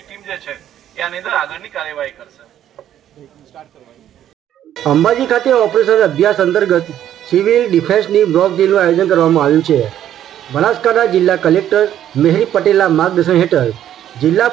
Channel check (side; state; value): left; quieter; 11.1 dB